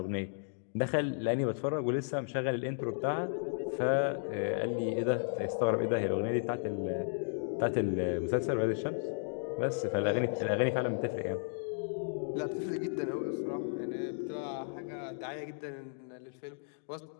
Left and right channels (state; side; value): silent; right; digital silence